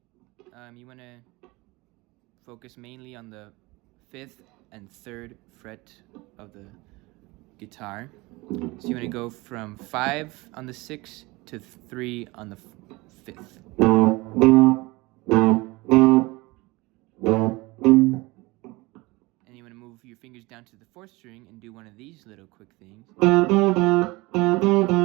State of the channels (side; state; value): left; quieter; 22.9 dB